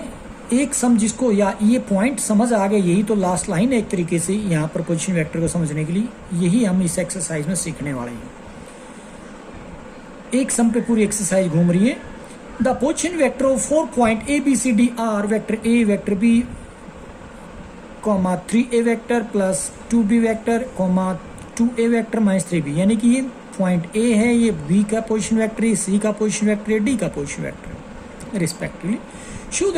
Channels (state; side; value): identical; both; correlation 1.00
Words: एक सम जिसको या ये पॉइंट समझ आ गया, यही तो लास्ट लाइन है एक तरीके से यहाँ पर पोजीशन वेक्टर को समझने के लिए, यही हम इस एक्सरसाइज में सीखने वाले हैं। एक सम पे पूरी एक्सरसाइज घूम रही है। The position vector of 4 point A B C D are vector A vector B comma 3a vector plus 2b vector comma 2a vector minus 3b। यानी कि ये पॉइंट ए है, ये बी का पोजीशन वेक्टर है, सी का पोजीशन वेक्टर है, D का पोजीशन वेक्टर है respectively. Show